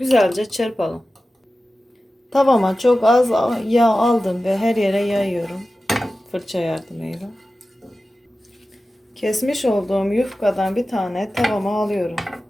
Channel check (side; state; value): both; normal; correlation 0.95